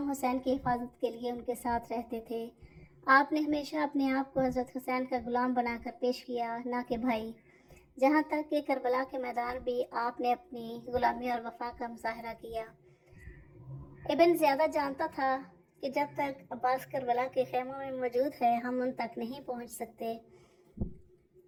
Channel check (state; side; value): identical; both; correlation 1.00